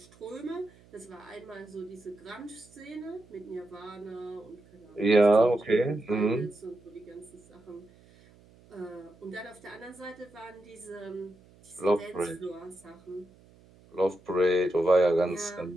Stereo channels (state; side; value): noise; right; hum, 26 dB below the sound